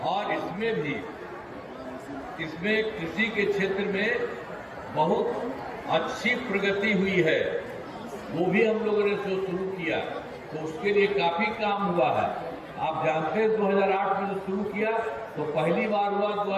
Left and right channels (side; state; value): both; identical; correlation 1.00